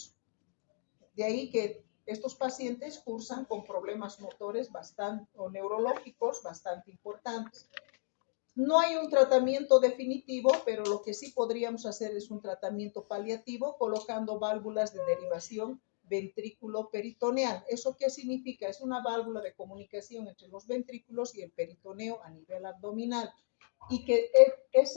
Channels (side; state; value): right; silent; digital silence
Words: De ahí que estos pacientes cursan con problemas motores o neurológicos bastante importantes. No hay un tratamiento definitivo, pero lo que sí podríamos hacer es un tratamiento paliativo colocando válvulas de derivación ventrículo-peritoneal. ¿Eso qué significa? Es una válvula de comunicación entre los ventrículos y el peritoneo a nivel abdominal. Y que